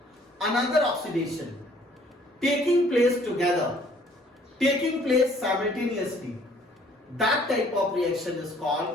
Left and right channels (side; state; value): both; normal; correlation 0.59